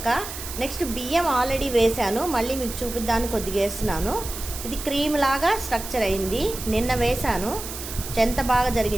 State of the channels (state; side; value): noise; right; hiss, 9 dB below the sound